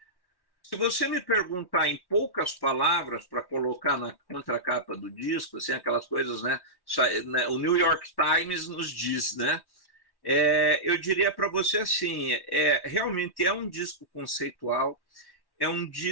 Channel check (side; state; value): right; late; 1.1 ms